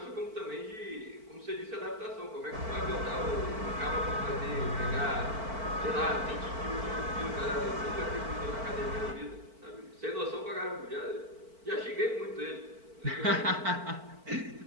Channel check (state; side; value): late; left; 4.5 ms